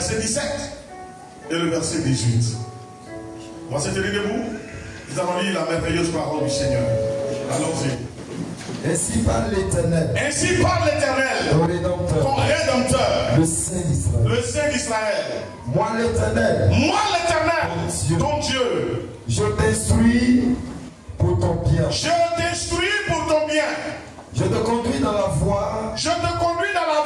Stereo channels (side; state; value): both; identical; correlation 1.00